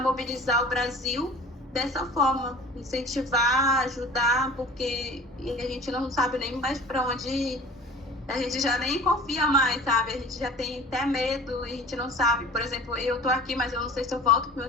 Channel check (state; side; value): normal; both; correlation 0.43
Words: o Brasil dessa forma, incentivar, ajudar, porque a gente não sabe nem mais para onde ir. A gente já nem confia mais, sabe? A gente já tem até medo e a gente não sabe. Por exemplo, eu tô aqui, mas eu não sei se eu volto pro